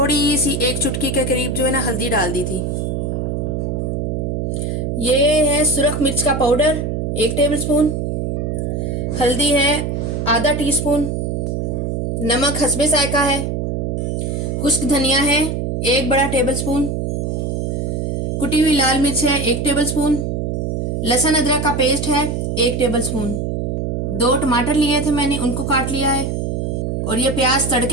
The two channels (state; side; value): noise; right; hum, 1 dB below the sound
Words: सी 1 चुटकी के करीब जो है ना हल्दी डाल दी थी। ये है सुरख मिर्च का पाउडर 1 टेबलस्पून, हल्दी है आधा टीस्पून, नमक हस्बे जायका है, खुश्क धनिया है 1 बड़ा टेबलस्पून, कुटी हुई लाल मिर्च है 1 टेबलस्पून, लहसुन अदरक का पेस्ट है 1 टेबलस्पून, 2 टमाटर लिए थे मैंने, उनको काट लिया है। और ये प्याज